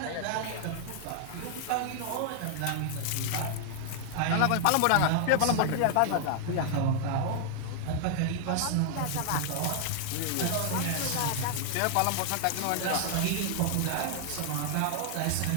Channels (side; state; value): both; different; correlation 0.00